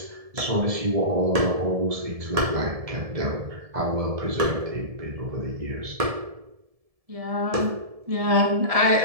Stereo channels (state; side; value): late; left; 1.7 ms